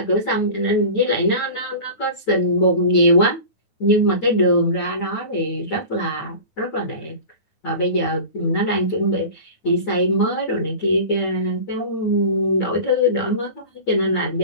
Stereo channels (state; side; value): late; right; 9.5 ms